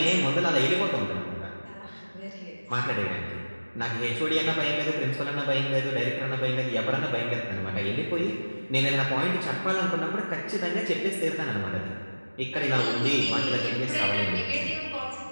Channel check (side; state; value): both; inverted; correlation -1.00